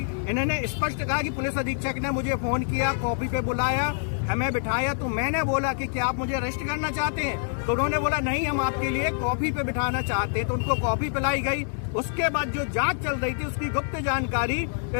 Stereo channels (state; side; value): silent; right; 61 dB below the other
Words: इन्होंने स्पष्ट कहा कि पुलिस अधीक्षक ने मुझे फोन किया, कॉपी पे बुलाया, हमें बिठाया, तो मैंने बोला कि क्या आप मुझे अरेस्ट करना चाहते हैं? तो उन्होंने बोला नहीं, हम आपके लिए कॉफी पे बिठाना चाहते हैं। तो उनको कॉफी पिलाई गई। उसके बाद जो जांच चल रही थी उसकी गुप्त जानकारी